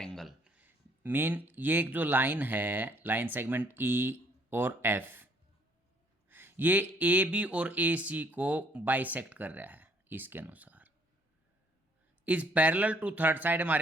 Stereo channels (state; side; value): normal; both; correlation 0.64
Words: Mean ये एक जो लाइन है, लाइन सेगमेंट ई और एफ, ये ए बी और ए सी को बाइसेक्ट कर रहा है। इसके अनुसार is parallel to third side,